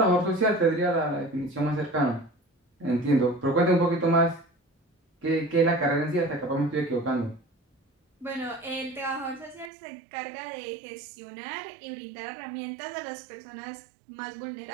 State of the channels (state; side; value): drops out; left; at 9.7 s